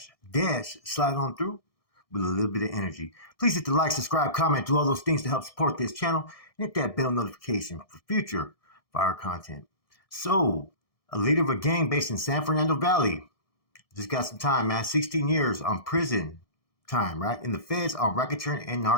slide on through with a little bit of energy. Please hit the like, subscribe, comment, do all those things to help support this channel, and hit that bell notification for future fire content. So, a leader of a gang based in San Fernando Valley just got some time, man. 16 years on prison time, right? In the feds on racketeering and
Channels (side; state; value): right; late; 1.6 ms